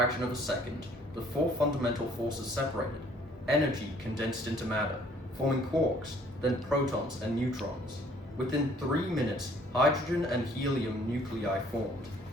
of a second, the four fundamental forces separated. Energy condensed into matter, forming quarks, then protons and neutrons. Within 3 minutes, hydrogen and helium nuclei formed.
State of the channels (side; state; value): both; normal; correlation 0.59